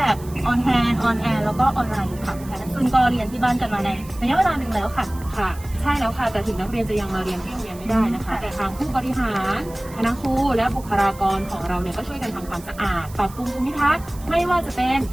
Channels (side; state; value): right; noise; hiss, 20 dB below the sound